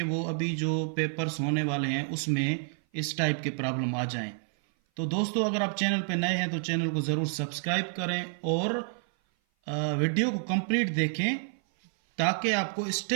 वो अभी जो पेपर्स होने वाले हैं उसमें इस टाइप के प्रॉब्लम आ जाएं। तो दोस्तों, अगर आप चैनल पे नए हैं तो चैनल को ज़रूर सब्सक्राइब करें और वीडियो को कंप्लीट देखें ताकि आपको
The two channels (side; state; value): left; silent; 56 dB below the other